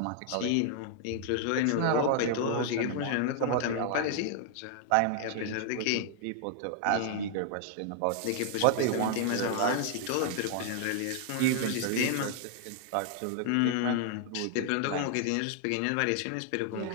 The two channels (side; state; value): both; different; correlation 0.00